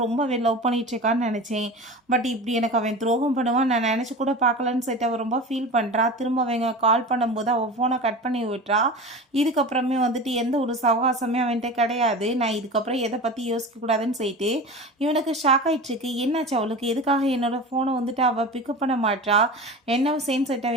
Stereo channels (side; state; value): both; normal; correlation 0.32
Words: ரொம்பவே லவ் பண்ணிட்டு இருக்கான்னு நினச்சேன். பட் இப்படி எனக்கு அவன் துரோகம் பண்ணுவான் நான் நினச்சி கூட பார்க்கலன்னு சொல்லிட்டு அவள் ரொம்ப ஃபீல் பண்ணுறா. திரும்ப அவங்க கால் பண்ணும்போது அவள் ஃபோனை கட் பண்ணி விட்டுறா. இதுக்கப்புறமே வந்துட்டு எந்த ஒரு சவகாசமே அவன்கிட்ட கிடையாது. நான் இதுக்கப்புறம் எதை பற்றி யோசிக்கக்கூடாதுன்னு சொல்லிட்டு இவனுக்கு ஷாக் ஆகிட்டுருக்கு. என்னாச்சு அவளுக்கு, எதுக்காக என்னோட ஃபோனை வந்துட்டு அவள் பிக்கப் பண்ண மாட்டா, என்ன சேம் சைட்டை